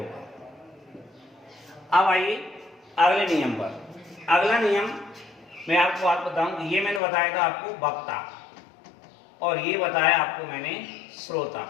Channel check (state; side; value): drops out; right; at 7.0 s